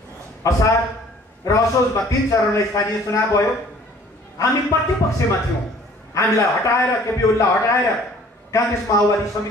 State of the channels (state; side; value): normal; both; correlation 0.54